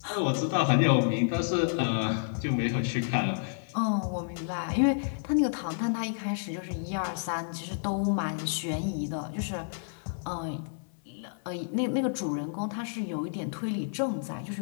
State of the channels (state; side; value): silent; right; 57 dB below the other